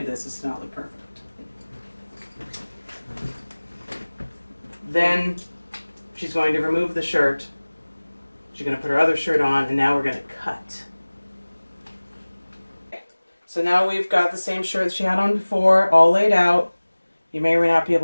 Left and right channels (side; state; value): both; inverted; correlation -1.00